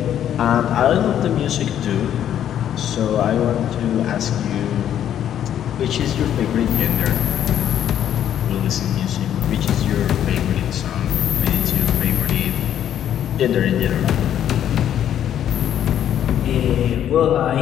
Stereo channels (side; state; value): right; quieter; 10.3 dB